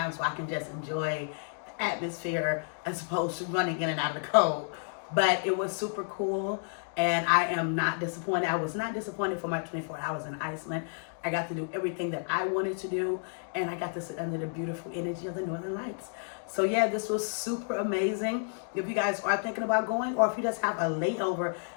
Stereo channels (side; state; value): right; silent; digital silence